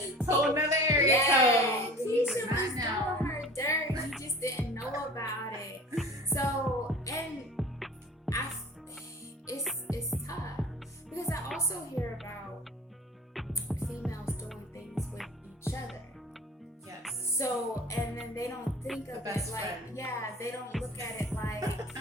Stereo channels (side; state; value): both; normal; correlation 0.41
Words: you. Whole another area yeah, code. Keisha was doing her dirt. You just didn't know about it. So, and it's tough. Because I also hear about females doing things with each other. Yes. So, and then they don't think of it like, they don't look at it like,